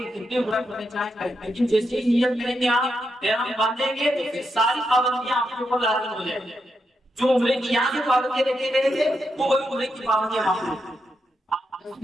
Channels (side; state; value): both; normal; correlation 0.84